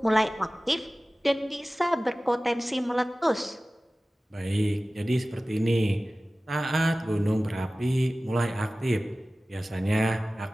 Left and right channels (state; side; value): normal; both; correlation 0.97